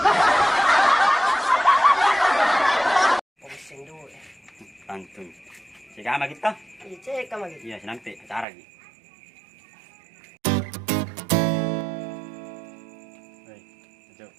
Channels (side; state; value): left; drops out; at 8.5 s